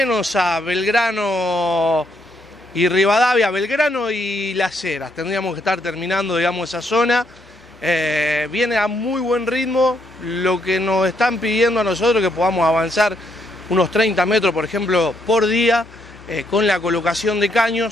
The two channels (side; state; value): both; normal; correlation 0.74